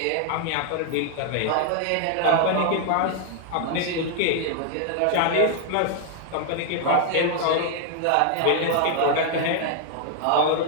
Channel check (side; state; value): both; different; correlation 0.00